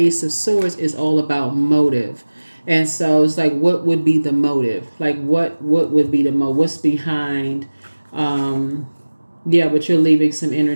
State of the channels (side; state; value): both; inverted; correlation -1.00